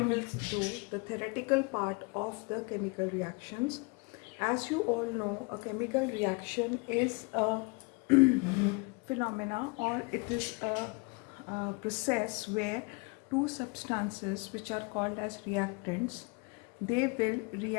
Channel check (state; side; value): quieter; right; 29.7 dB